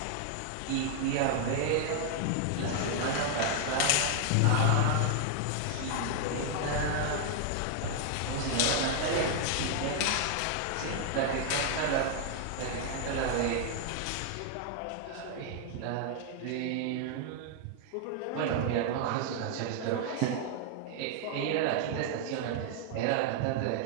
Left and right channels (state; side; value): different; both; correlation 0.00